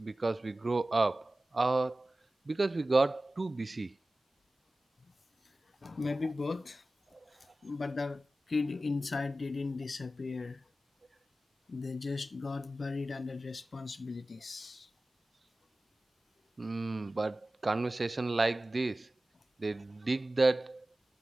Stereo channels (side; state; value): both; normal; correlation 0.96